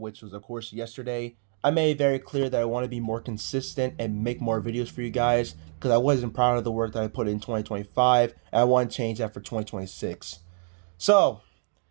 was of course yesterday, I made it very clear that I want to be more consistent and make more videos for you guys because I wasn't proud of the work that I put in 2025 and I want to change that for 2026. So,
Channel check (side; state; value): left; silent; 60 dB below the other